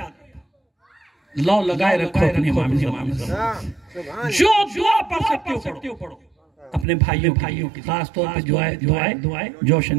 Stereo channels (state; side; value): drops out; left; at 6.9 s